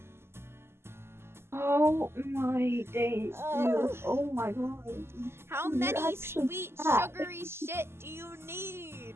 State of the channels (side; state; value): left; late; 0.12 ms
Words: Oh my days, dude. Oh my god. How many sweet, sugary shit do you need?